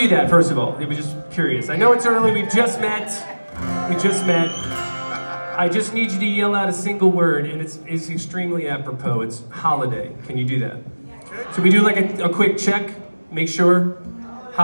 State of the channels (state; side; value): inverted; both; correlation -1.00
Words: that, first of all? I was just curious. I know it's early, we just met. I just need you to yell out a single word, and it's extremely apropos. It's holiday. Can you do that? So we do like a quick check, make sure.